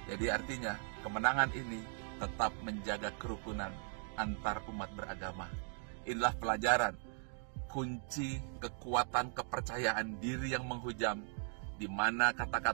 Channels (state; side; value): silent; left; 52 dB below the other